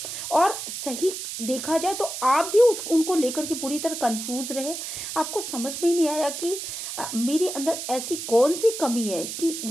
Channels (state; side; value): noise; right; hiss, 6 dB below the sound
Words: और सही देखा जाए तो आप भी उनको लेकर के पूरी तरह कंफ्यूज रहे। आपको समझ में ही नहीं आया कि मेरे अंदर ऐसी कौन सी कमी है कि